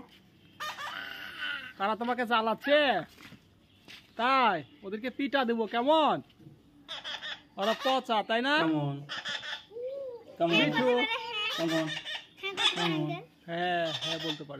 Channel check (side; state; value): both; identical; correlation 1.00